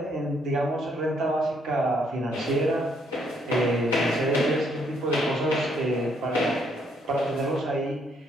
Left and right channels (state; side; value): normal; both; correlation 0.71